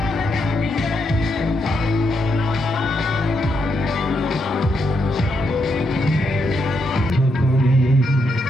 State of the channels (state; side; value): normal; both; correlation 0.79